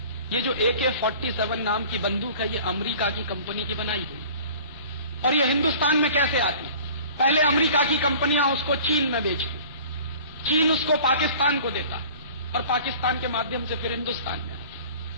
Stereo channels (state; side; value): inverted; both; correlation -0.45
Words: ये जो AK-47 नाम की बंदूक है, ये अमेरिका की कंपनी की बनाई हुई। और ये हिंदुस्तान में कैसे आती? पहले अमेरिका की कंपनियां उसको चीन में बेचती, चीन उसको पाकिस्तान को देता और पाकिस्तान के माध्यम से फिर हिंदुस्तान में